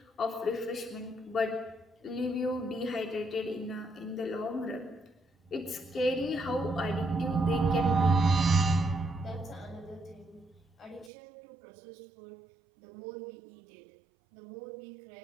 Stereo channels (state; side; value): drops out; left; at 11.1 s